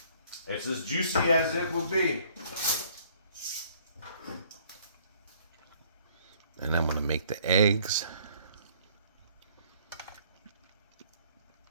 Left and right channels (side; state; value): both; inverted; correlation -0.60